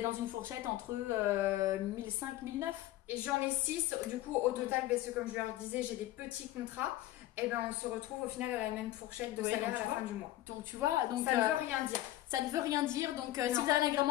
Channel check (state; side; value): quieter; right; 15.2 dB